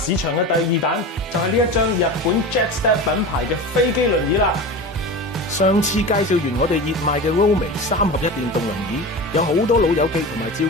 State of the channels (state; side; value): normal; both; correlation 0.29